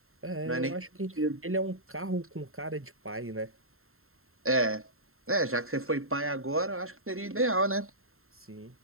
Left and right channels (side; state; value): left; late; 0.61 ms